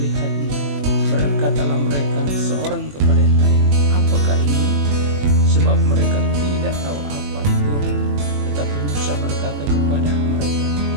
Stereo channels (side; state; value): left; late; 21 ms